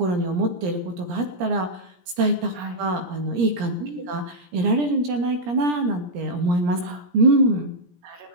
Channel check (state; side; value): late; left; 17 ms